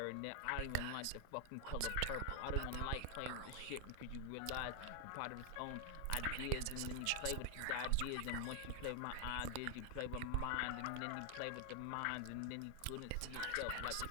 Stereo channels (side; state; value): both; different; correlation 0.00